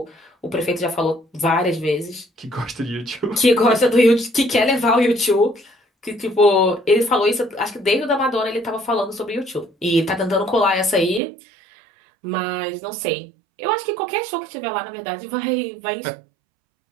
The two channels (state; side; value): drops out; left; at 11.2 s